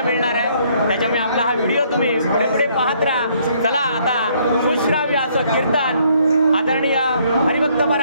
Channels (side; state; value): both; inverted; correlation -0.66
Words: मिळणार आहे. त्याच्यामुळे आपला हा व्हिडिओ तुम्ही पुढे पुढे पाहत राहा. चला आता सुश्राव्य असं कीर्तन आदरणीय हरिभक्त